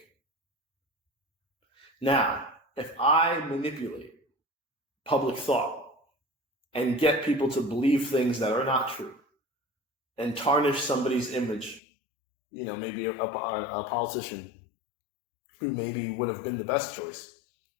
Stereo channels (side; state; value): right; drops out; at 11.8 s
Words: Now, if I manipulate public thought and get people to believe things that are not true and tarnish somebody's image, maybe a politician who maybe would have been the best choice,